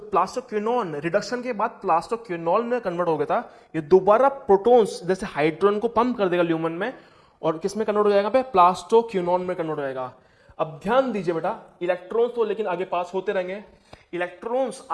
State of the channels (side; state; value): both; identical; correlation 1.00